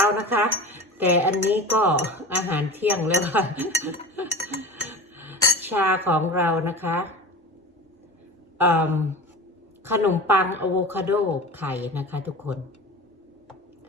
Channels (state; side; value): normal; both; correlation 0.33